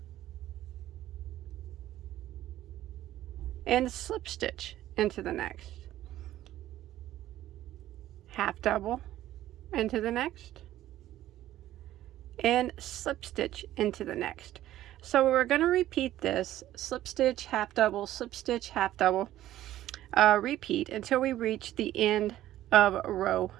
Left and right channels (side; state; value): left; quieter; 13.7 dB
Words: and slip stitch into the next. Half double into the next and slip stitch into the next. So we're going to repeat this slip stitch, half double, slip stitch, half double, repeat until we reach the end of row